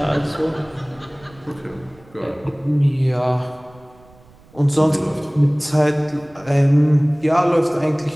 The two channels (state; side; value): noise; right; rumble, 27 dB below the sound